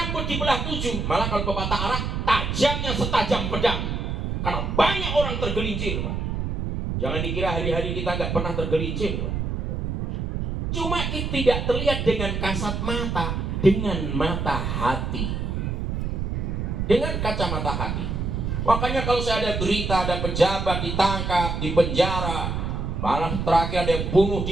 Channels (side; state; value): right; noise; rumble, 2 dB below the sound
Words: dibelah 7, malah kalau pepatah Arab, tajamnya setajam pedang. Karena banyak orang tergelincir, Pak. Jangan dikira hari-hari kita nggak pernah tergelincir, Pak. Cuma itu tidak terlihat dengan kasat mata, dengan mata hati, dengan kacamata hati. Makanya kalau saya ada berita, ada pejabat ditangkap, di penjara, malah terakhir ada yang bunuh